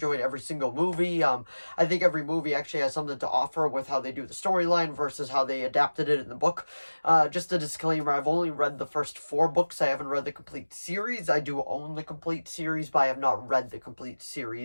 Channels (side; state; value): both; inverted; correlation -1.00